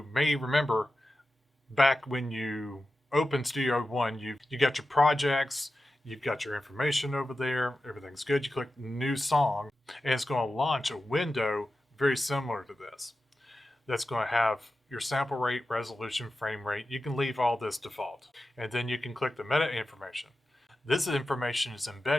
may remember, back when you opened Studio 1, you got your projects, you've got your information over there, everything's good. You click new song, and it's going to launch a window very similar to this. That's going to have your sample rate, resolution, frame rate. You can leave all this default. And then you can click the meta information. This information is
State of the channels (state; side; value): normal; both; correlation 0.93